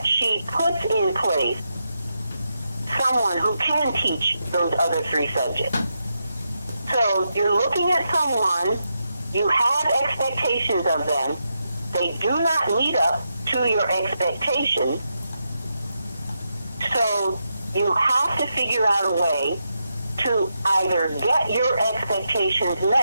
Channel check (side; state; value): both; inverted; correlation -0.85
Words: she puts in place someone who can teach those other 3 subjects. So you're looking at someone, you have expectations of them, they do not meet up to your expectations, so you have to figure out a way to either get your expectations